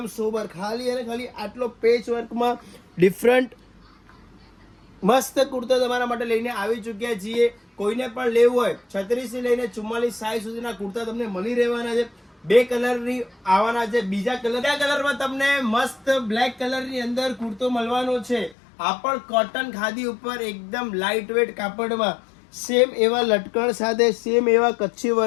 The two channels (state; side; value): drops out; right; at 18.6 s